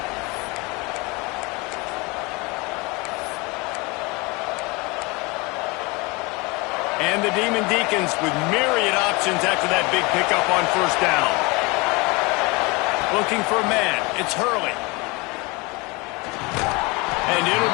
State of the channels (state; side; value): quieter; right; 26.3 dB